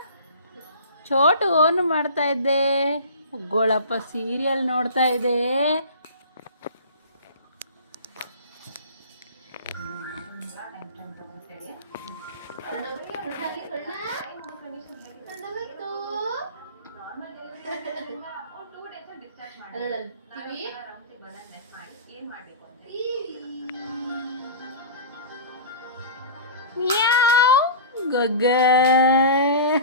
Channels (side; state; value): both; inverted; correlation -0.35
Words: ಚೋಟು ಓನು ಮಾಡ್ತಾ ಇದ್ದೆ. ಗೋಳಪ್ಪ ಸೀರಿಯಲ್ ನೋಡ್ತಾ ಇದೆ. ಮ್ಯಾವ್ ಗೊಗ್ಗ